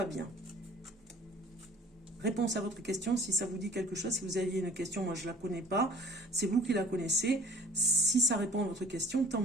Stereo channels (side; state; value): both; normal; correlation 0.49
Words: bien. Réponse à votre question, si ça vous dit quelque chose, si vous aviez une question, moi je ne la connais pas, c'est vous qui la connaissez. Si ça répond à votre question, tant